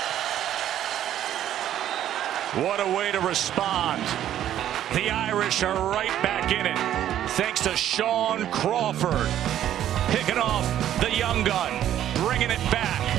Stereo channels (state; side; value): quieter; left; 11.4 dB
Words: What a way to respond. The Irish are right back in it, thanks to Sean Crawford picking off the young gun, bringing it back,